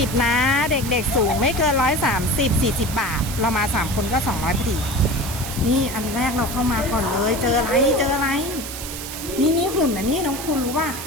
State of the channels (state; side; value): noise; right; hiss, 9 dB below the sound